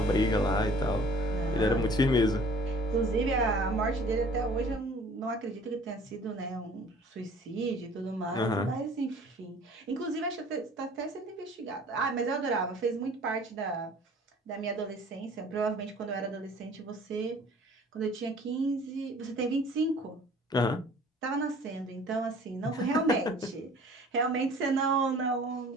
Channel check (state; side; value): normal; both; correlation 0.50